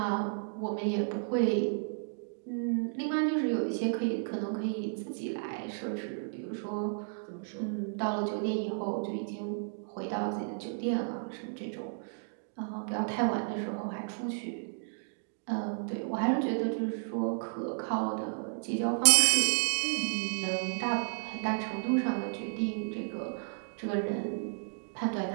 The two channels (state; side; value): silent; left; digital silence